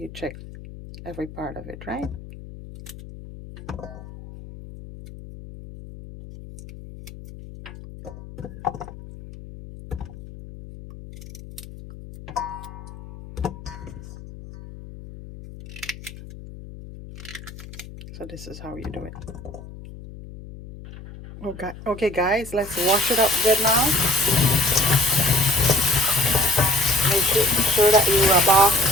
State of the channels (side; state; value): left; noise; hum, 15 dB below the sound